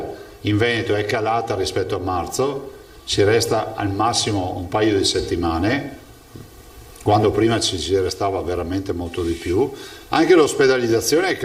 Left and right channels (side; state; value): both; identical; correlation 1.00